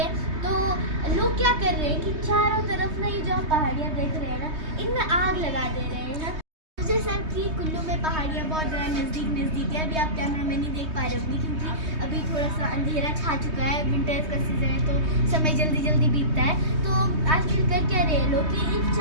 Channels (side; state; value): left; late; 3.2 ms